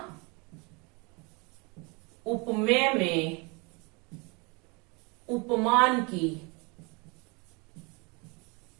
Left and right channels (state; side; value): quieter; left; 29.5 dB